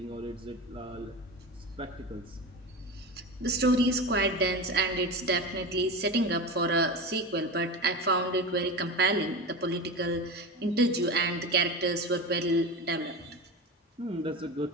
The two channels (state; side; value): normal; both; correlation 0.25